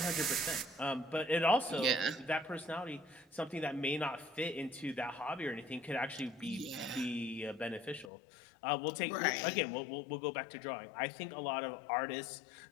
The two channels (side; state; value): right; drops out; at 8.1 s